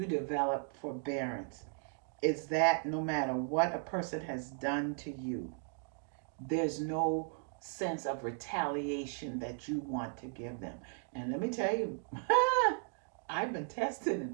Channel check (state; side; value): silent; left; 54 dB below the other